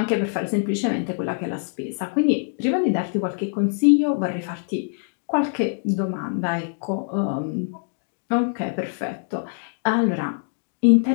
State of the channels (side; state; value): right; silent; digital silence